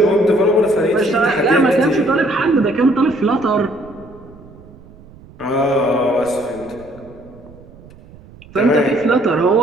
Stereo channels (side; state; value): right; noise; rumble, 22 dB below the sound